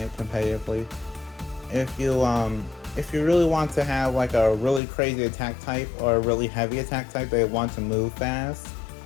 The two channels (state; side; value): drops out; right; at 4.8 s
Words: competitively. If you really want to have like a really crazy attack type or a really heavy attack type that want to move fast,